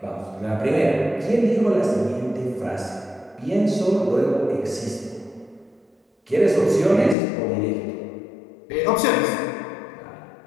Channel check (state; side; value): drops out; right; at 7.2 s